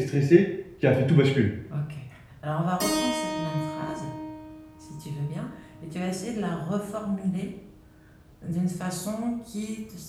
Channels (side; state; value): both; identical; correlation 1.00